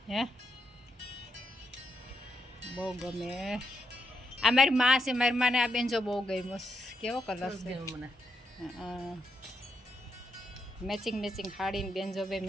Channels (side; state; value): both; normal; correlation 0.81